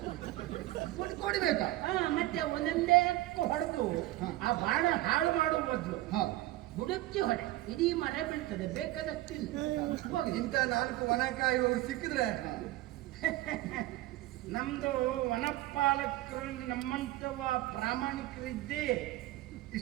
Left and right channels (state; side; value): quieter; left; 16.8 dB